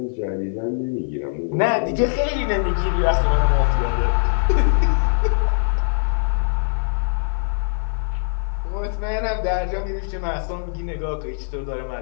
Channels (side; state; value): right; silent; 59 dB below the other